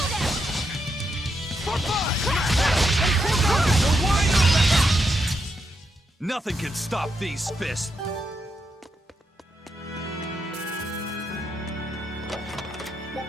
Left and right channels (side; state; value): both; normal; correlation 0.82